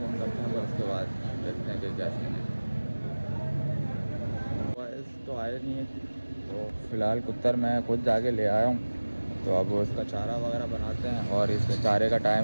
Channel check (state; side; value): inverted; both; correlation -1.00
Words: करते हैं, फिर उसके बाद देखते हैं कि क्या सीन है। बॉयज़ तो आए नहीं है, तो फ़िलहाल कुत्तर मैं खुद जाके ले आया हूँ। तो अब उसका चारा वगैरह बनाते हैं और इसके चारे का